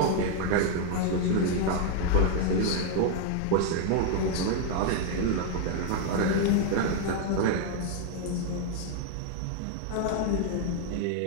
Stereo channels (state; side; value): different; both; correlation 0.00